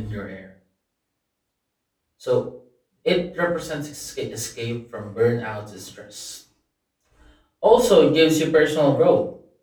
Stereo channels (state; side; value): identical; both; correlation 1.00